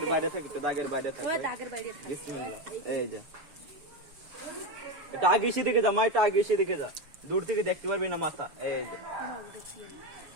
বাইরে থাকে, একটু দাগের বাইরে থাকে। বিসমিল্লাহ। এই যে এটা আগে এসে দেখে যা মা, এটা আগে এসে দেখে যা, দূর থেকে দেখতে পারবি না মাথা। এই যে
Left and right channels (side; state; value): left; late; 6.9 ms